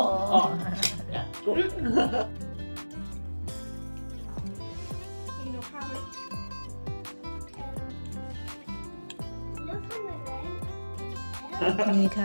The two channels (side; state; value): both; inverted; correlation -1.00